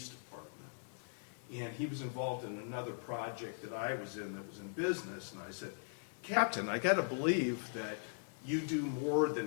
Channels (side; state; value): right; silent; digital silence